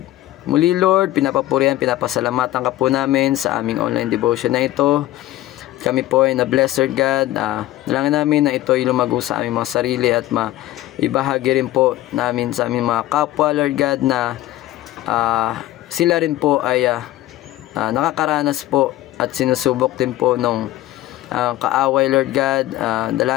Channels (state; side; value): quieter; right; 15.4 dB